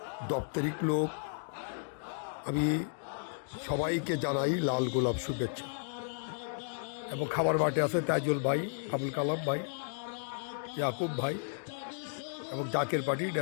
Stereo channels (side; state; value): right; silent; digital silence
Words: দপ্তরিক লোক, আমি সবাইকে জানাই লাল গোলাপ শুভেচ্ছা। এবং খাবার মাঠে আছে তাইজুল ভাই, আবুল কালাম ভাই, ইয়াকুব ভাই এবং জাকের পার্টির